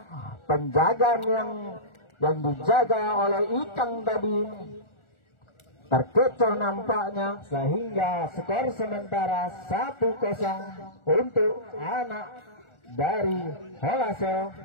Penjagaan yang dijaga oleh Ikang tadi terkecoh nampaknya, sehingga skor sementara 1-0 untuk anak dari Holasel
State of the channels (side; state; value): right; late; 1.4 ms